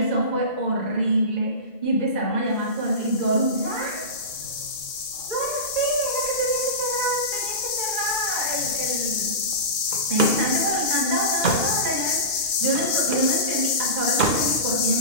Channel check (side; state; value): right; late; 2.9 ms